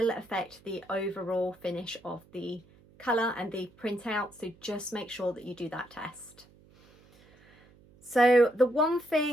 affect the overall finish of the colour and the printout. So just make sure that you do that test. So the one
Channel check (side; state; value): right; noise; hum, 27 dB below the sound